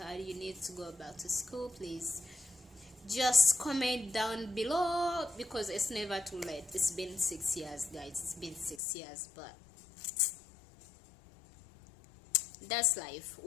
need to go back to school, please just comment down below, because it's never too late. It's been 6 years, guys. It's been 6 years, but that's life.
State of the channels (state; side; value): drops out; right; at 8.8 s